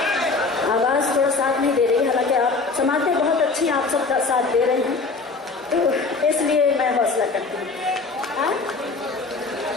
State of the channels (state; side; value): quieter; right; 4.0 dB